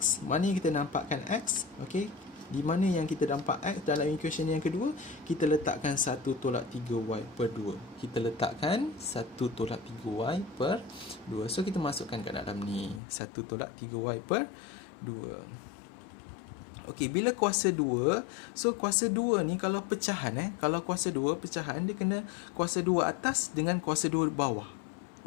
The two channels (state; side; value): drops out; right; at 13.0 s